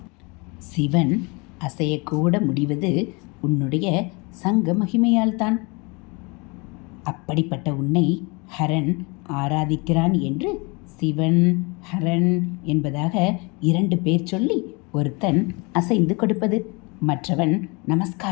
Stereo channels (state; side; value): quieter; right; 28.9 dB